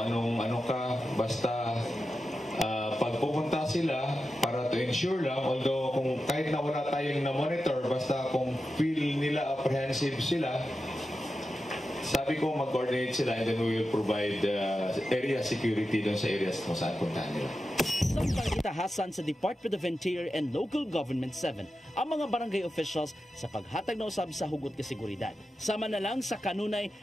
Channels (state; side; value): normal; both; correlation 0.91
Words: ano ka, basta pagpupunta sila para to ensure lang, although kung kahit na wala tayong na-monitor, basta kung feel nila apprehensive sila, sabi ko mag-coordinate sila and then we will provide area security doon sa areas kung saan puntahan nila. Samtang itahasan sa Department of Interior and Local Government 7 ang mga barangay officials sa paghatag na usab sa hugot ka seguridad. Sama na lang sa kanunay